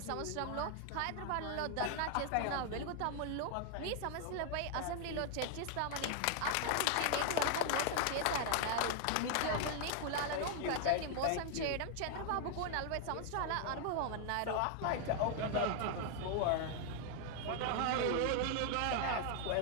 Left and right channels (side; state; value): both; different; correlation 0.00